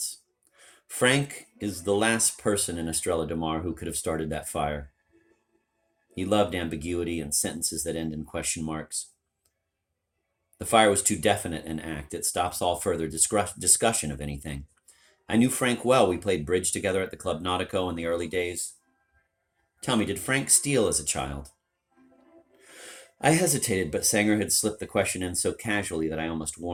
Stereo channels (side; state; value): both; identical; correlation 1.00